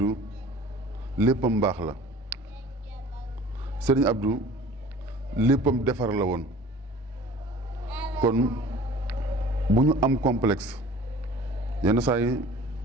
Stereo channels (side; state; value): both; normal; correlation 0.45